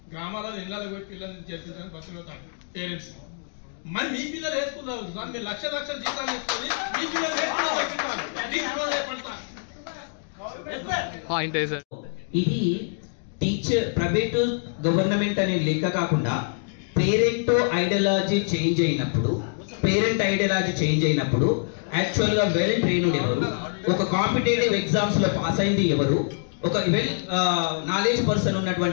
గ్రామాలలో ఇళ్ళకి పోయి పిల్లల్ని చేర్పించడానికి బతుకుతాను పేరెంట్స్. మరి మీ పిల్లలు ఏ స్కూల్లో సార్? మీరు లక్షల జీతాలు ఇస్తుంది, మీ పిల్లలు ఏ స్కూల్లో? ఇది టీచర్ ప్రైవేట్ గవర్నమెంట్ అనే లెక్క కాకుండా పేరెంట్ ఐడియాలజీ చేంజ్ అయినప్పుడు యాక్చువల్ గా వెల్ ట్రైన్డ్ ఎవరు, ఒక కాంపిటేటివ్ ఎగ్జామ్స్ లో పాస్ అయింది ఎవరు, ఒక వెల్ నాలెడ్జ్ పర్సన్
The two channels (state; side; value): silent; right; digital silence